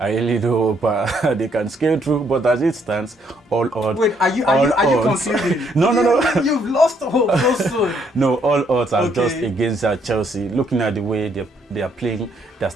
do hope they can scale through, but as it stands, all odds. Wait, are you concluding? No. You've lost hope so soon. No, all odds are just against Chelsea. Looking at the way they are playing, their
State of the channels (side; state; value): both; normal; correlation 0.70